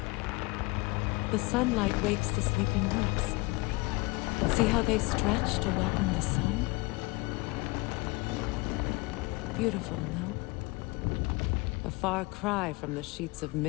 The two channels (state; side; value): quieter; right; 24.5 dB